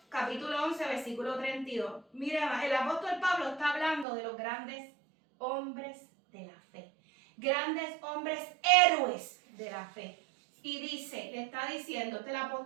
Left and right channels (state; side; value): drops out; left; at 4.0 s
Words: capítulo 11, versículo 32. Mire, el apóstol Pablo está hablando de los grandes hombres de la fe. Grandes hombres héroes de la fe. Y dice, le está diciendo, el